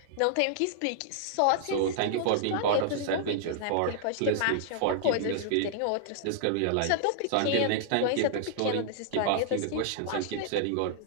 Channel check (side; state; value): both; different; correlation -0.01